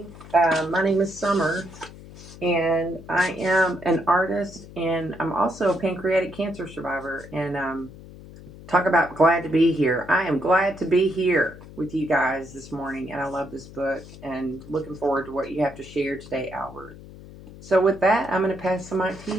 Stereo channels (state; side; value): noise; left; hum, 17 dB below the sound